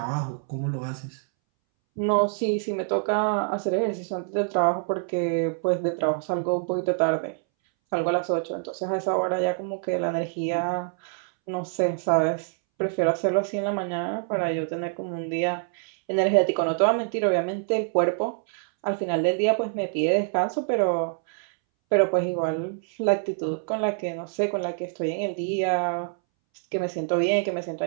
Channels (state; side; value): silent; left; 61 dB below the other